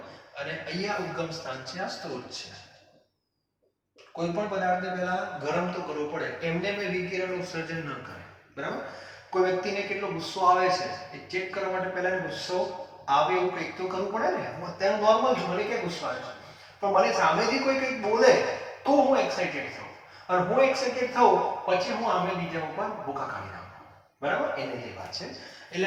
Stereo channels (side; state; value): both; identical; correlation 1.00